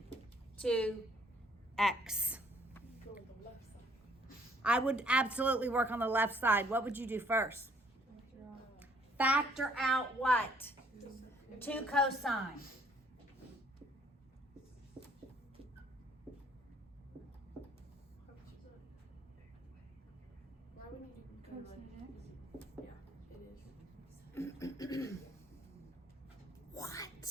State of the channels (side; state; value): both; normal; correlation 0.62